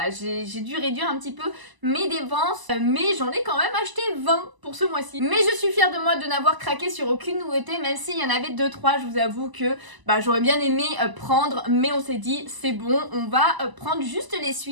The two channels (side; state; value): left; late; 1.0 ms